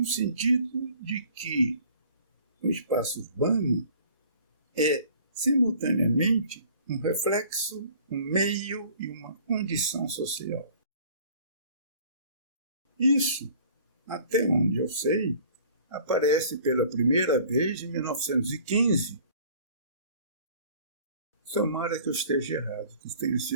sentido de que o espaço urbano é, simultaneamente, um reflexo, um meio e uma condição social. Isso, até onde eu sei, aparece pela primeira vez em 1915. Tomara que eu esteja errado, que tenha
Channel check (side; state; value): both; inverted; correlation -0.50